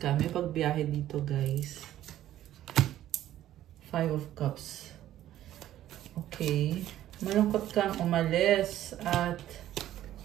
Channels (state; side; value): quieter; left; 12.9 dB